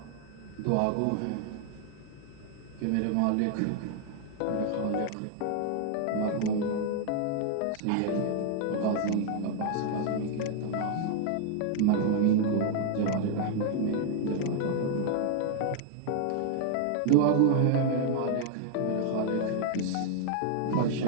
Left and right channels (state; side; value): different; both; correlation 0.00